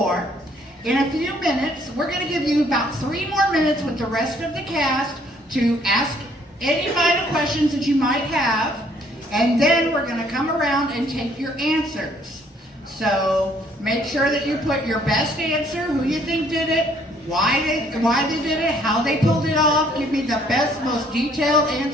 In a few minutes, we're going to give you about 3 more minutes with the rest of the cast to ask any final questions that you might have, and then we're going to come around and take your answers. So make sure that you put your best answer, who you think did it, why they did it, how they pulled it off. Give me the best, most detailed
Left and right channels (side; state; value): both; normal; correlation 0.63